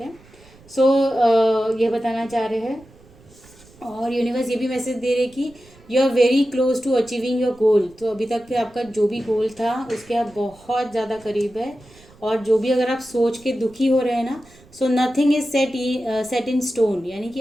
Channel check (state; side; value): noise; right; rumble, 26 dB below the sound